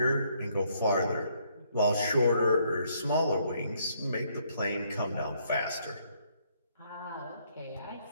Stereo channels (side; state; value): both; inverted; correlation -0.69